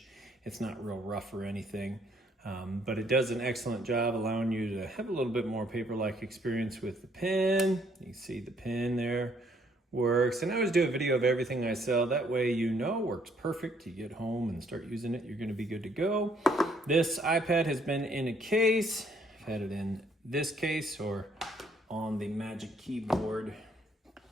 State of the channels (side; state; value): both; normal; correlation 0.66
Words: It's not real rough or anything, but it does an excellent job allowing you to have a little bit more paper-like experience with the pen. You can see the pen there works, and I always do a video of everything I sell. That way you know works perfect. You get home and start using it, you're going to be good to go. This iPad has been in a case. I've had it in this case or on the Magic Keyboard